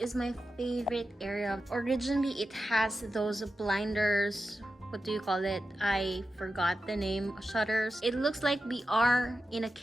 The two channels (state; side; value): normal; both; correlation 0.91